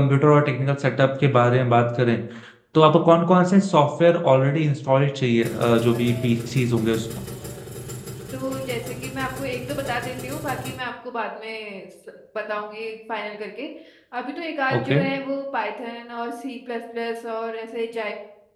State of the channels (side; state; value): both; identical; correlation 1.00